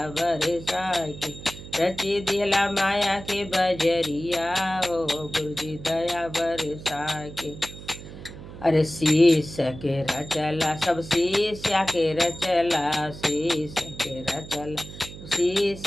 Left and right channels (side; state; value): right; noise; hum, 14 dB below the sound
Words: बरसाए के। रची दिहला माया के बजरिया हो गुरुजी दया बरसाए के। अरे शीश के रचला सब शीशा के रचला। शीश के रचला